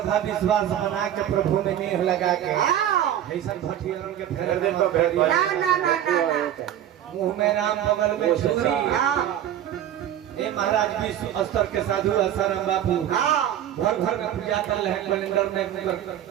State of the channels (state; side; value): quieter; left; 11.1 dB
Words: विश्वास बना के प्रभु में नेह लगा के ऐसा भटियारों के फेर दे तो ना ना ना मुंह में राम बगल में छुरी ए महाराज विश्व स्तर के साधु आसाराम बापू घर घर में पूजा कर रहे कैलेंडर में